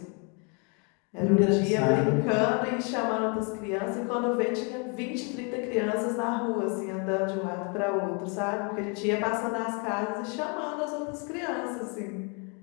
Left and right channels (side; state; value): right; quieter; 35.4 dB